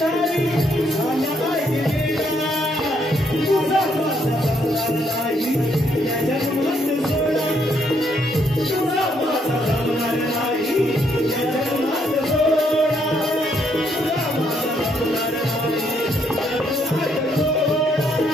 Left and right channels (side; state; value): both; normal; correlation 0.72